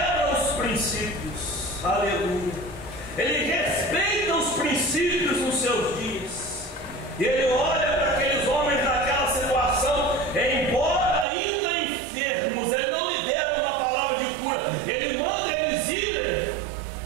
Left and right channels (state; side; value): drops out; left; at 11.2 s